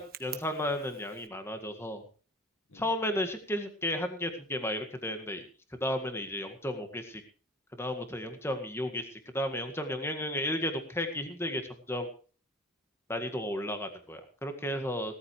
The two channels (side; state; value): both; normal; correlation 0.42